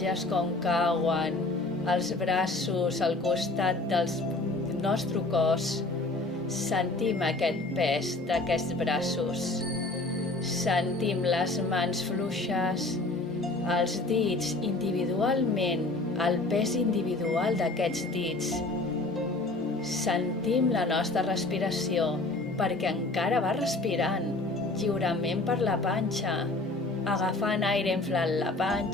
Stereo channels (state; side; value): quieter; right; 3.0 dB